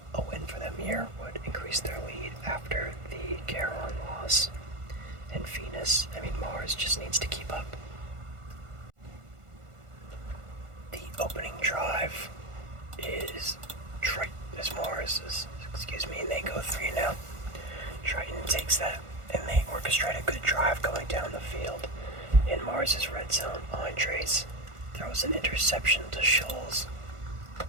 a win for them here would increase their lead after the Caron loss. And Mars just needs to keep up. The opening drive is Mars, and they go 3 now. Triton takes that, and they orchestrate a good drive going down the field. In Mars's red zone, Andres throws an interception to Scholes.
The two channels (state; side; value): late; left; 1.4 ms